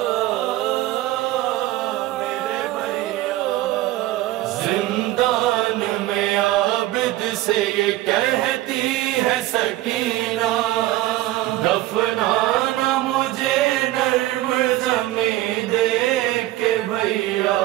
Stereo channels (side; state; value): left; quieter; 16.2 dB